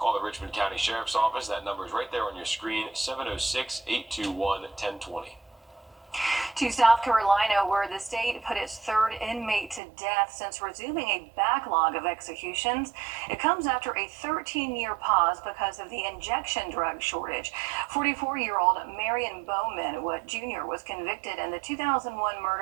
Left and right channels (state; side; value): drops out; left; at 9.8 s